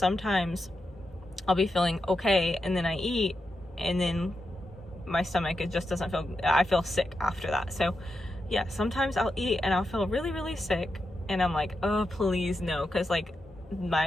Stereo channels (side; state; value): both; normal; correlation 0.87